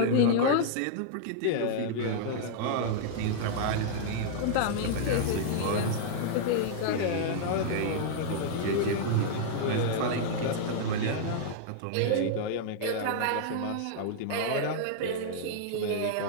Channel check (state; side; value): different; both; correlation -0.01